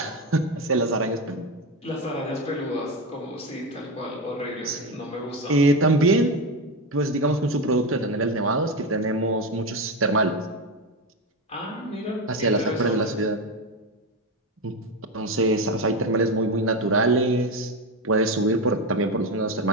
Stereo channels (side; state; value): both; normal; correlation 0.15